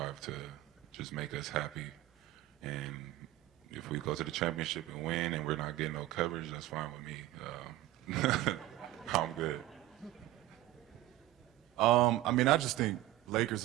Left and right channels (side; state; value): left; quieter; 15.8 dB